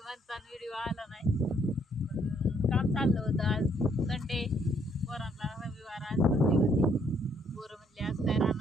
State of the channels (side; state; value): both; normal; correlation 0.69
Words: म्हणता व्हिडिओ आला नाही. काम चाललं होतं. आज संडे, पोरांना रविवार, आज सुट्टी होती. पोरं म्हणले आज काय